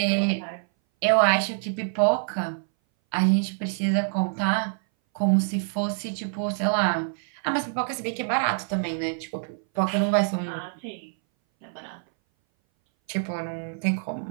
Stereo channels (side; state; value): left; silent; 59 dB below the other